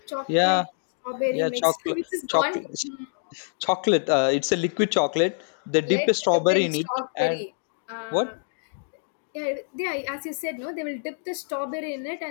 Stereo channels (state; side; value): silent; right; digital silence